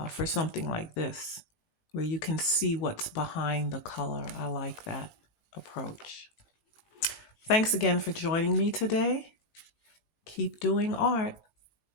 for something like this, where you can see what's behind the color, I like that approach. Thanks again for joining me today. Keep doing art.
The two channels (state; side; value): late; right; 19 ms